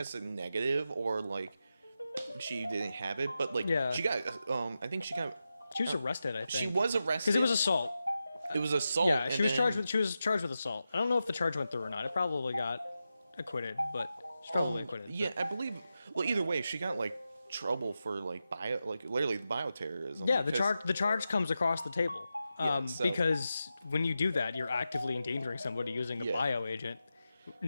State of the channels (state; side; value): inverted; both; correlation -0.90